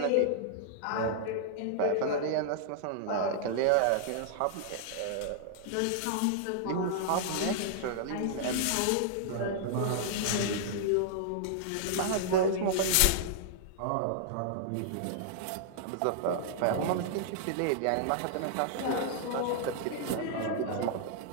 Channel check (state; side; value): different; both; correlation -0.01